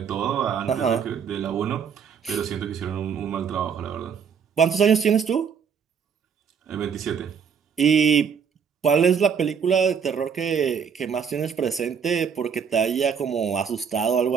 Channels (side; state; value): left; quieter; 6.9 dB